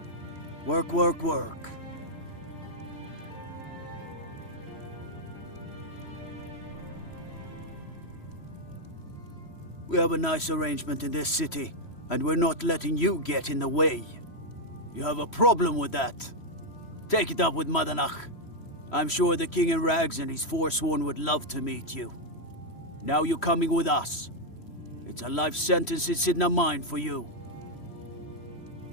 Work, work, work. We have a nice arrangement in this city, and we're not letting you get in the way. You have a problem with that? Take it up with Madanach. I'm sure the King in Rags and his Forsworn would love to meet you. Now you're coming with us. It's a life sentence it's in the mind for you.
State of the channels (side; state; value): right; late; 3.1 ms